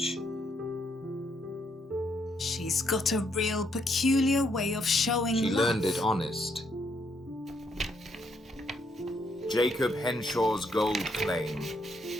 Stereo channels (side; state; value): both; normal; correlation 0.74